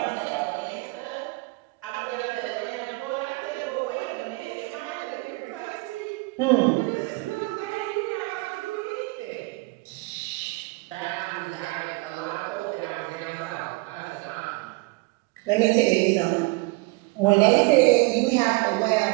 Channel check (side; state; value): left; quieter; 25.9 dB